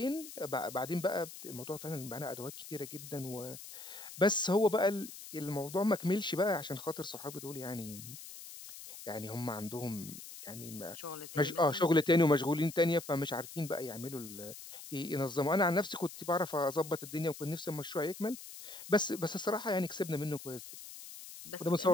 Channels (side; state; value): left; noise; hiss, 13 dB below the sound